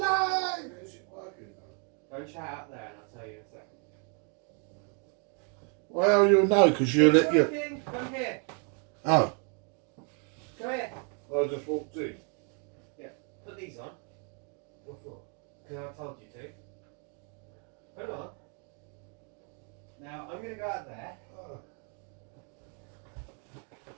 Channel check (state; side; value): quieter; left; 39.5 dB